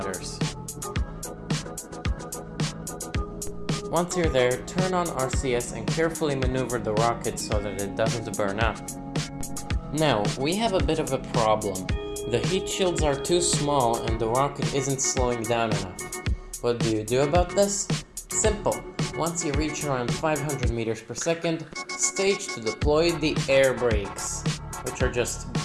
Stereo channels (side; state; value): both; identical; correlation 1.00